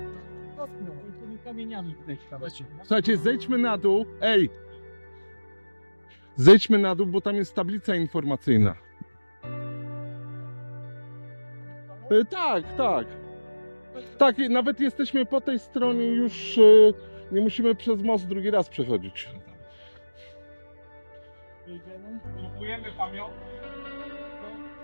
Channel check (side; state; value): both; inverted; correlation -1.00